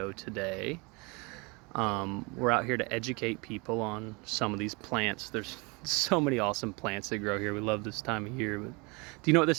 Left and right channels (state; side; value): quieter; left; 28.1 dB